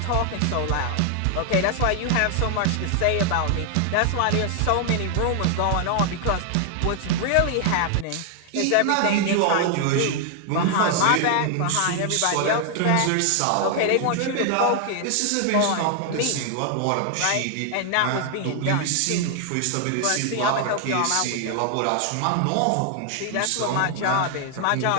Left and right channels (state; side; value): different; both; correlation 0.00